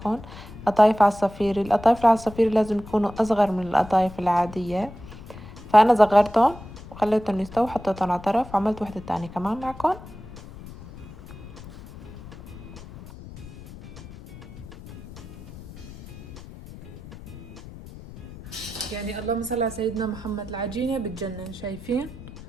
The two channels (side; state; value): left; noise; rumble, 16 dB below the sound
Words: قطايف عصافيري. القطايف العصافيري لازم يكونوا اصغر من القطايف العادية، فانا صغرتهم وخليتهم يستووا، حطيتهم على طرف، وعملت وحدة تانية كمان معكم. يعني اللهم صل على سيدنا محمد، العجينة بتجنن، شايفين؟